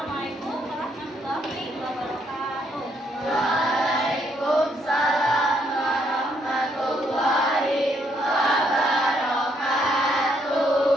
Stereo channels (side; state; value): both; normal; correlation 0.72